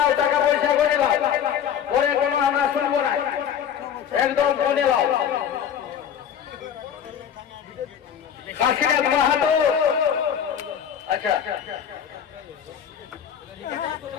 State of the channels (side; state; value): right; quieter; 8.7 dB